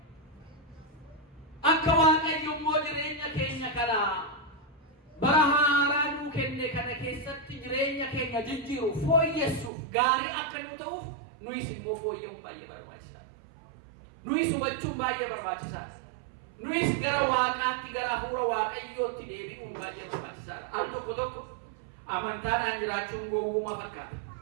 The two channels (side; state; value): left; drops out; at 9.7 s